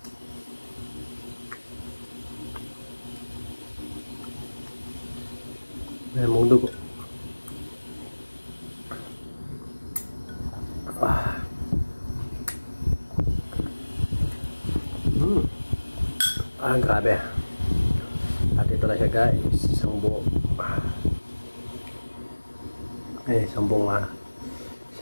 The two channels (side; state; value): both; inverted; correlation -1.00